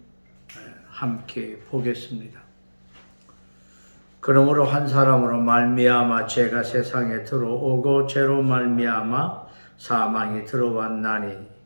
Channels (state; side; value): inverted; both; correlation -1.00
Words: 함께 보겠습니다. 그러므로 한 사람으로 말미암아 죄가 세상에 들어오고 죄로 말미암아 사망이 들어왔나니